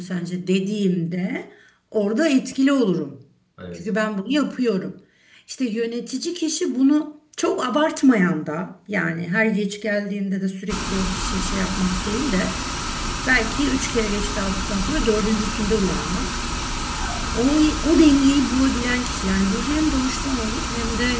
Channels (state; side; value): identical; both; correlation 1.00